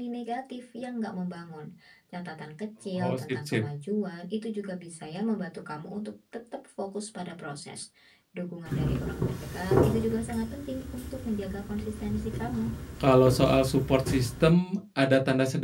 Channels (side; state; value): both; identical; correlation 1.00